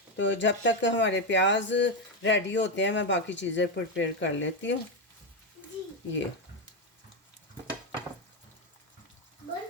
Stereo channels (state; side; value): normal; both; correlation 0.08